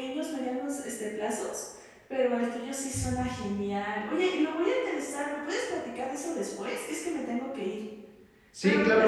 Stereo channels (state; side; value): identical; both; correlation 1.00